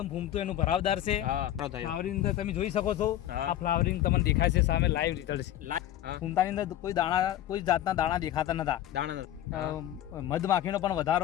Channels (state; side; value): quieter; right; 12.5 dB